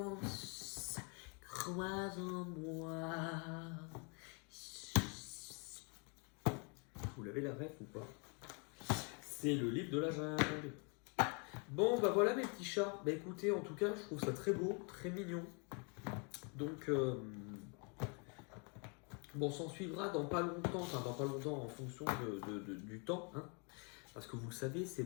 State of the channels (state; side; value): quieter; right; 35.4 dB